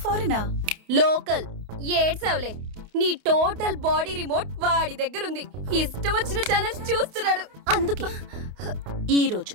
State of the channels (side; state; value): left; late; 28 ms